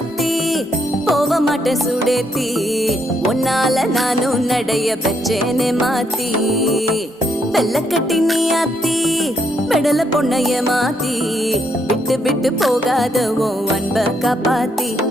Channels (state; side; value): normal; both; correlation 0.75